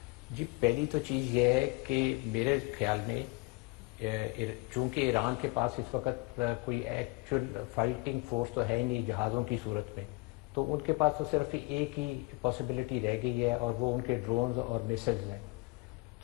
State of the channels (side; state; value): right; quieter; 26.1 dB